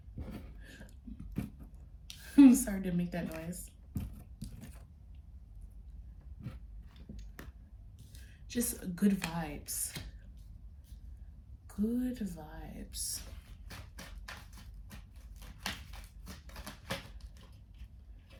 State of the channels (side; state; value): both; identical; correlation 1.00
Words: I'm sorry to make that noise. Just good vibes. Good vibes.